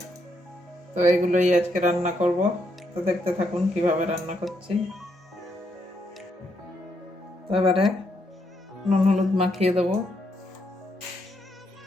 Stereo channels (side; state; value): both; normal; correlation 0.77